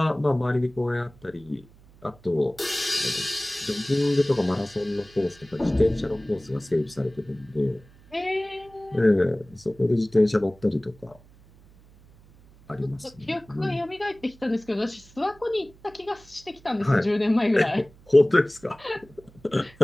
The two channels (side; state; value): right; noise; hum, 26 dB below the sound